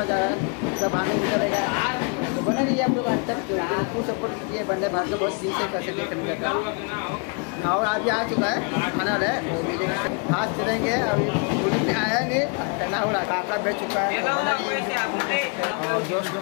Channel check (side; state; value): right; quieter; 36.3 dB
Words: जा रहा है, सब आगे निकलेगा। तो बना रही है आप लोग आज तक, तो फुल सपोर्ट कीजिए। वंदे भारत को बहुत दिन से कैसे देखने जाता है और अभी आ चुका है खाना है। आज चलेंगे, अभी पुलिस में आया नहीं, टना हो रहा काका बैठ चुका है। तो बना रही है और दोस्त